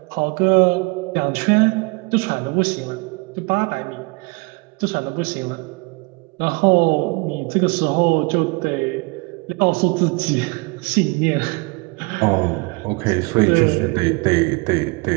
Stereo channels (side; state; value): left; quieter; 28.6 dB